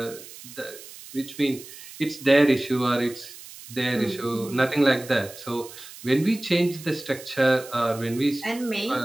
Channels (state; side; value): noise; right; hiss, 16 dB below the sound